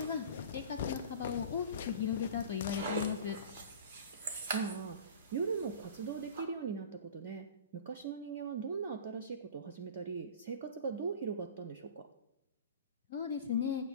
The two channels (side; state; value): both; inverted; correlation -0.37